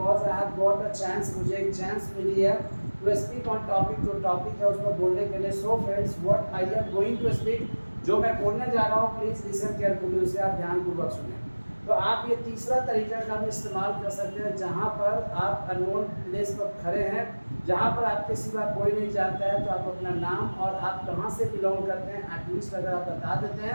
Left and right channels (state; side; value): inverted; both; correlation -1.00